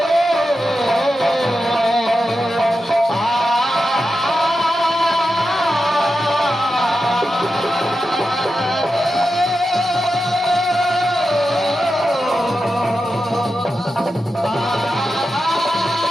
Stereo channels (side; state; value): both; normal; correlation 0.90